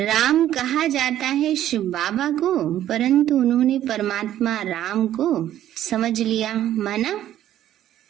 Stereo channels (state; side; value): quieter; left; 12.1 dB